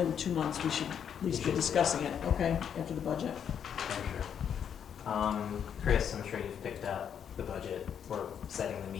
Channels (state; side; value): quieter; right; 8.2 dB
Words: 2 months, we should at least be discussing it, okay, after the budget. Thank you. Chris, I'm sure you've picked up the budget. We're setting the